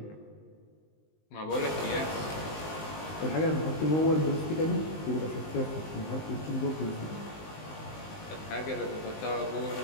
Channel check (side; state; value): right; late; 19 ms